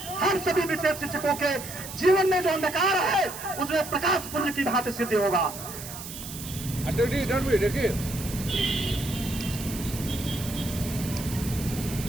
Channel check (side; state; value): right; noise; hiss, 11 dB below the sound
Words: हम सभी विशेष शिक्षकों के जीवन में जो अंधकार है उसमें प्रकाश पुंज की भांति सिद्ध होगा।